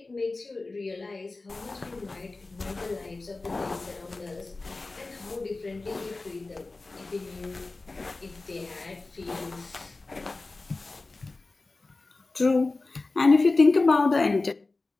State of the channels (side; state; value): right; quieter; 3.4 dB